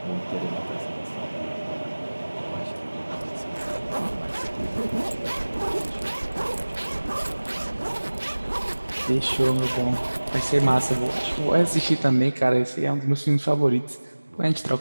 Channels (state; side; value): inverted; both; correlation -1.00